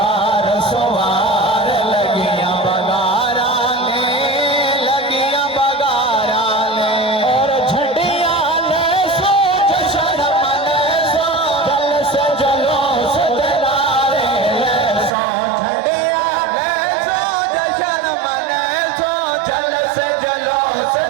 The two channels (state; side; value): drops out; left; at 15.1 s